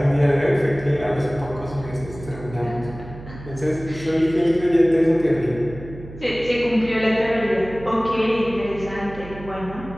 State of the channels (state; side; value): noise; right; hum, 15 dB below the sound